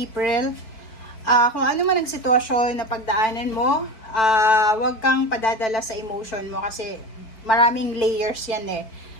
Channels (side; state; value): right; late; 4.5 ms